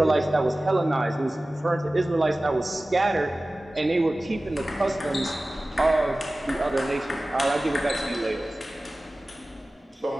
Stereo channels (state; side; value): normal; both; correlation 0.97